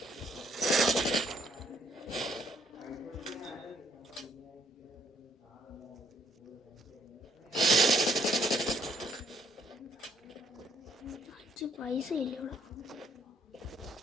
പൈസ ഇല്ല ഇവിടെ.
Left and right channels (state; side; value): normal; both; correlation 0.67